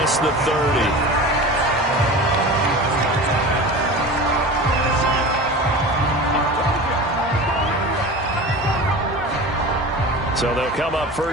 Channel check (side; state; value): both; normal; correlation 0.33